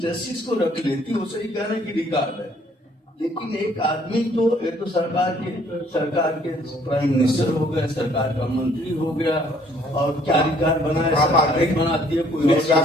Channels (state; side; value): normal; both; correlation 0.62